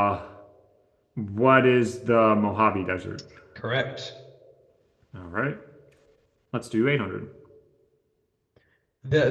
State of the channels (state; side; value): identical; both; correlation 1.00